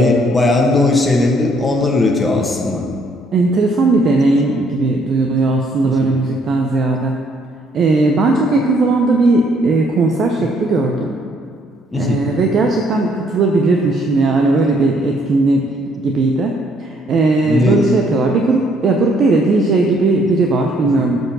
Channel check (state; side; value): normal; both; correlation 0.67